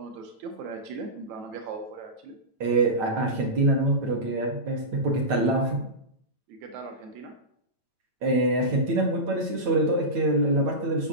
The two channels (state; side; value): late; left; 9.1 ms